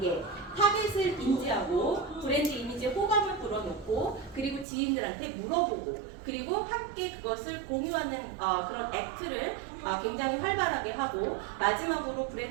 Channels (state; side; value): drops out; left; at 4.7 s